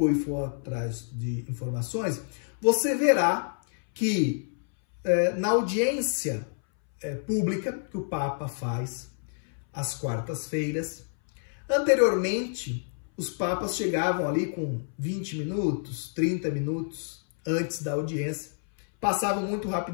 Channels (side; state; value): right; silent; 59 dB below the other